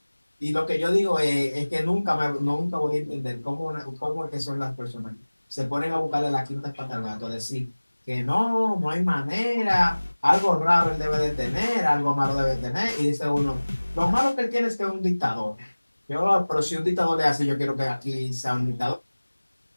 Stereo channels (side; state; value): both; inverted; correlation -1.00